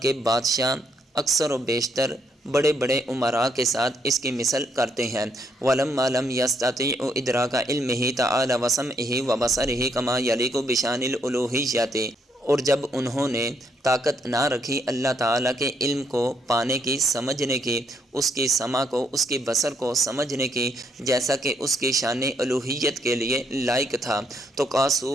کے بادشاہ اکثر و بیشتر بڑے بڑے امراء کے ساتھ اس کی مثل کرتے ہیں۔ وَلَمَّا لَمْ يَسْتَطِيعُوا إِدْرَاكَ عِلْمِهِ تَعَالَى وَسَمْعِهِ وَبَصَرِهِ كَمَا يَلِيقُ بِشَأْنِ الْأُلُوهِيَّةِ، اور جب انہوں نے طاقت نہ رکھی اللہ تعالیٰ کے علم کو پانے کی، سمجھنے کی، اس کی سمع کو، اس کی بصر کو سمجھنے کی، جیسا کہ اس کی شان الوہیت کے لیے لائق تھا، تو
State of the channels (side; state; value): both; normal; correlation 0.73